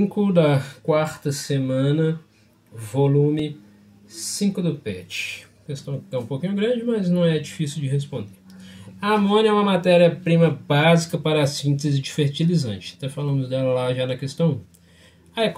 da quarta semana, volume 5 do PET. Questão que é um pouquinho grande, mas não é difícil de responder. A amônia é uma matéria-prima básica para a síntese de fertilizante. Até falamos dela lá já na questão 1. A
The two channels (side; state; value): both; identical; correlation 1.00